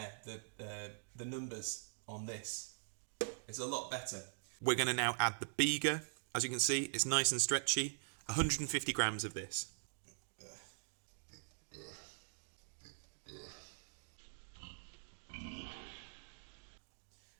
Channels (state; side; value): silent; left; digital silence